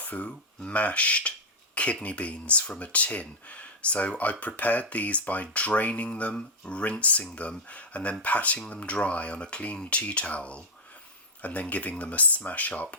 mashed kidney beans from a tin. So I prepared these by draining them, rinsing them, and then patting them dry on a clean tea towel, and then giving them a smash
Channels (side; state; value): both; normal; correlation -0.01